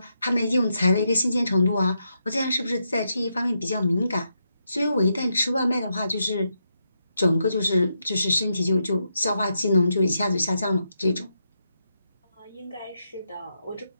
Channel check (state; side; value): inverted; both; correlation -0.83